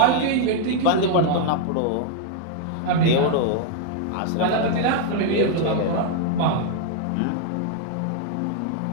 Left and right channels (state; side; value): different; both; correlation 0.00